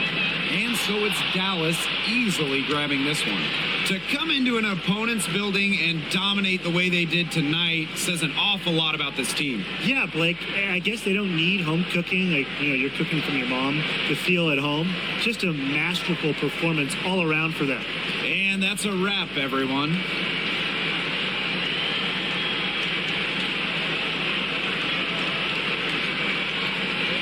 And so it's Dallas easily grabbing this one. To come into an opponent's building and dominate the way they did tonight says an awful lot about this team. Yeah, Blake, I guess they don't need home cooking, like, you're cooking from your mom, to feel at home. Just a masterful performance all around for them. And that's a wrap, everyone.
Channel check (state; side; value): noise; left; hum, 24 dB below the sound